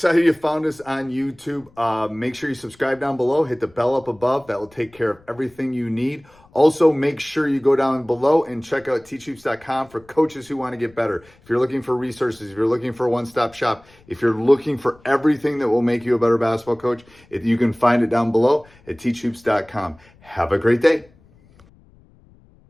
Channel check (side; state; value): left; noise; rumble, 28 dB below the sound